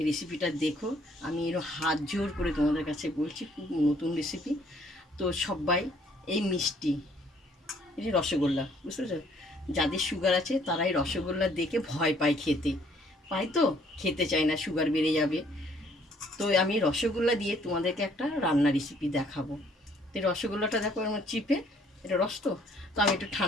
রেসিপিটা দেখো। আমি এর হাত জোর করে তোমাদের কাছে বলছি, খুব নতুন রেসিপি। তো সবাই এই মিষ্টি, এই যে রসগোল্লা, বুঝতে পেরেছো? যাদের সুগার আছে তারাই রসগোল্লা দেখে ভয় পায়, খেতে চায় না, সুগার বেড়ে যাবে। তো আমি রসগোল্লা দিয়ে তোমাদেরকে একটা রান্না রেসিপি দেখাবো। তো রসগোল্লাটা দেখো আমার চিপে, এটা রস তো আমি একটু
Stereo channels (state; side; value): normal; both; correlation 0.63